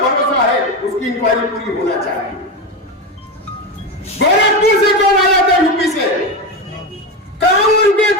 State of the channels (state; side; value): normal; both; correlation 0.16